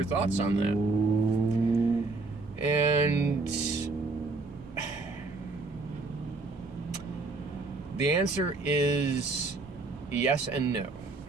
thoughts on that." And the answer is yes and no.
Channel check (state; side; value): quieter; left; 3.5 dB